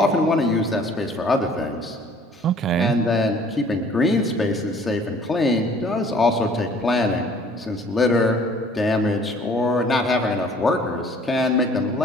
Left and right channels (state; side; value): normal; both; correlation 0.54